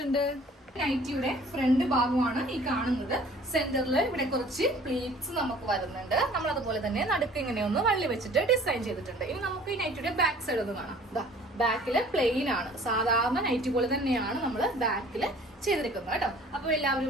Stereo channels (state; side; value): normal; both; correlation 0.51